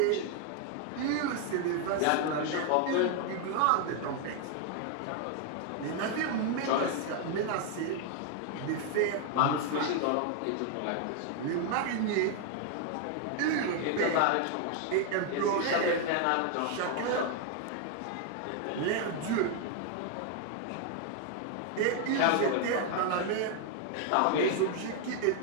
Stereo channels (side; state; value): both; different; correlation 0.00